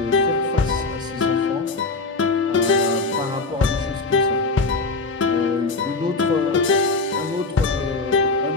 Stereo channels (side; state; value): right; quieter; 3.7 dB